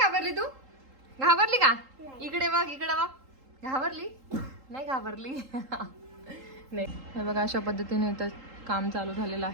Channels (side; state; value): left; late; 3.8 ms